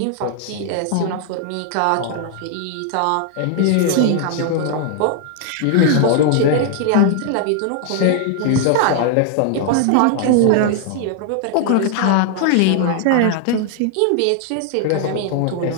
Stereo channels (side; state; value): both; different; correlation 0.00